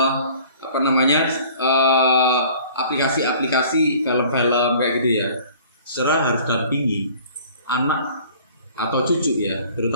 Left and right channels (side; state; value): both; inverted; correlation -0.50